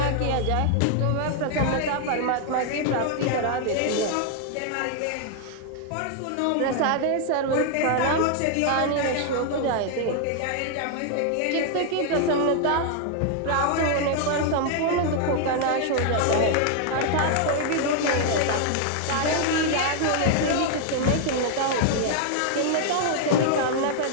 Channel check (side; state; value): both; different; correlation 0.00